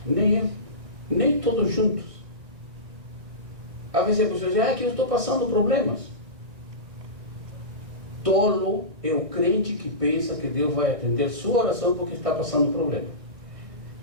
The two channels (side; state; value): left; late; 1.6 ms